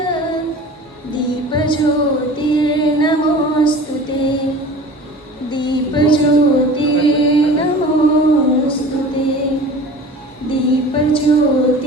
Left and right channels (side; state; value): both; normal; correlation 0.41